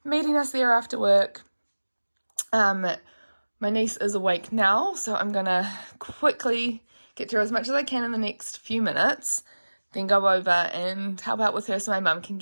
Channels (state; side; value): inverted; both; correlation -1.00